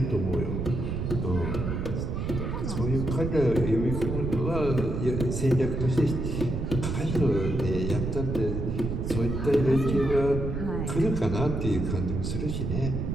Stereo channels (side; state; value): right; noise; rumble, 2 dB below the sound